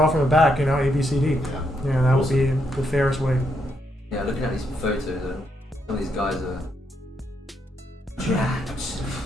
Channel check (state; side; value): normal; both; correlation 0.78